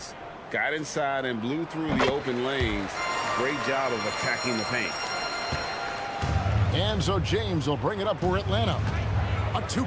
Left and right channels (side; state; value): both; identical; correlation 1.00